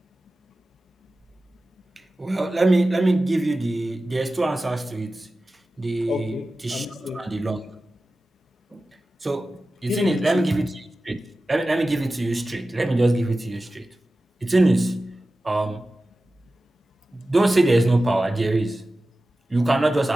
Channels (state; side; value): normal; both; correlation 0.95